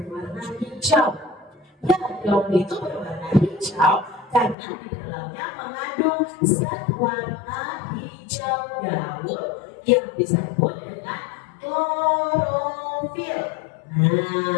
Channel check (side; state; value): right; drops out; at 4.5 s